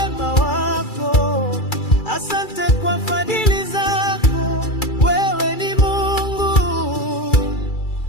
wako, asante kwa fadhili zako. Wewe ni Mungu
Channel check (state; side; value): late; right; 2.3 ms